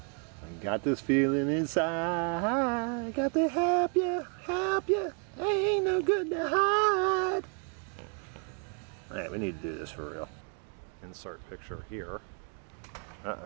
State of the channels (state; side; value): quieter; left; 40.0 dB